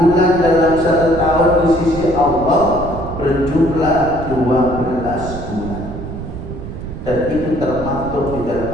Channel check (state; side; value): noise; right; rumble, 9 dB below the sound